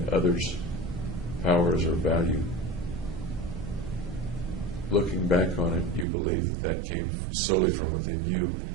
others' powers or value, looking back on it, you believe that came solely from within you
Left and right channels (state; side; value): drops out; left; at 6.1 s